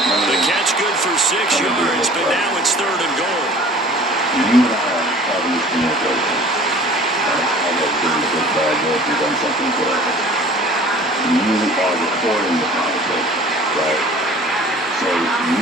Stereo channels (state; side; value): normal; both; correlation 0.47